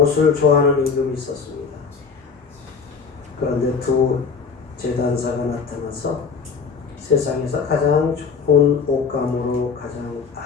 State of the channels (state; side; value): quieter; right; 5.5 dB